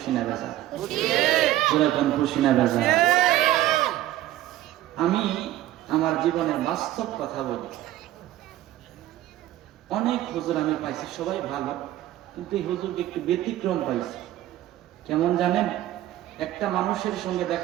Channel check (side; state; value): left; quieter; 14.0 dB